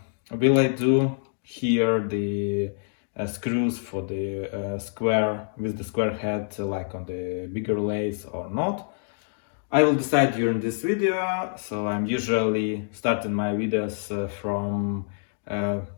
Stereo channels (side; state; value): right; silent; digital silence